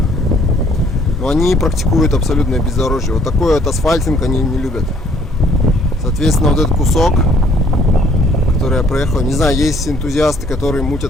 Но они практикуют абсолютное бездорожье. Вот такой вот асфальтинг они не любят. Соответственно, вот этот кусок, который я проехал, не знаю, есть энтузиасты, которые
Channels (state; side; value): normal; both; correlation 0.62